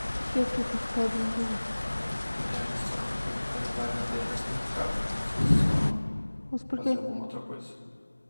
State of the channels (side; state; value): both; inverted; correlation -1.00